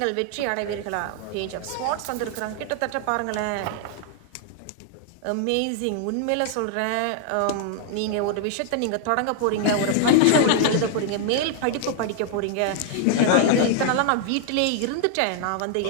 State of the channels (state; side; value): different; both; correlation 0.00